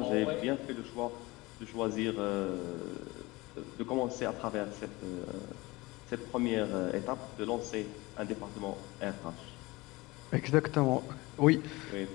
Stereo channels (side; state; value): right; quieter; 22.0 dB